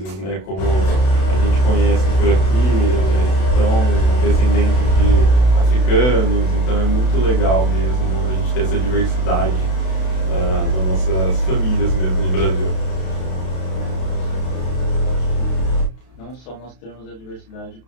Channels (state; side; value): late; right; 32 ms